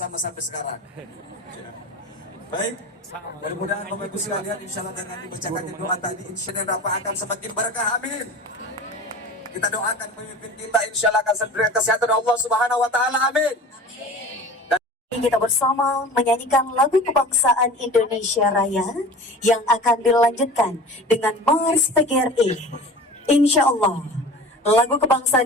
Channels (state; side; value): normal; both; correlation 0.38